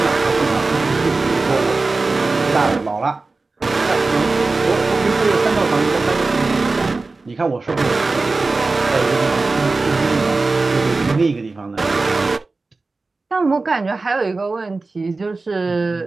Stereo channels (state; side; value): quieter; left; 3.6 dB